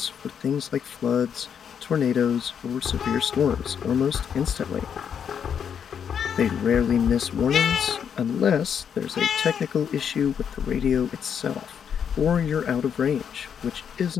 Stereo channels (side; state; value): right; quieter; 7.8 dB